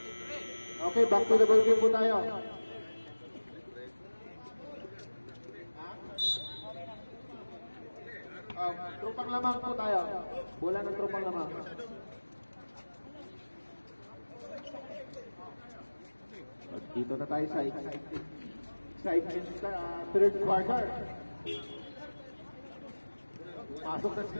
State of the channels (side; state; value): both; inverted; correlation -1.00